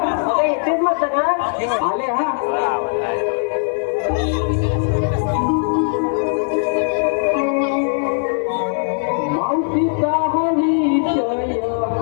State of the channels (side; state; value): right; silent; 66 dB below the other